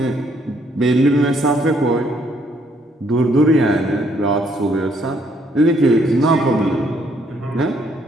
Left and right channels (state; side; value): normal; both; correlation 0.69